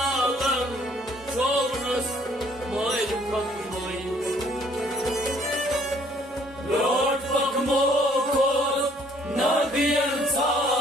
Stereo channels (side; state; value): both; normal; correlation 0.61